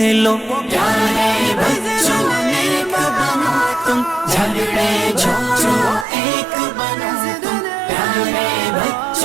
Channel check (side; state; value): left; drops out; at 6.1 s